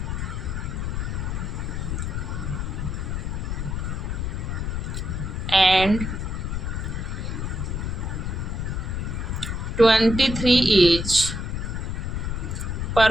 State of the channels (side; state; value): left; noise; rumble, 2 dB below the sound